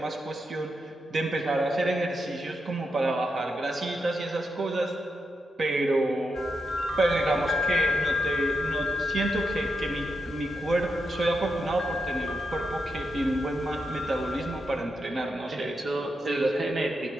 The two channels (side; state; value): both; normal; correlation 0.85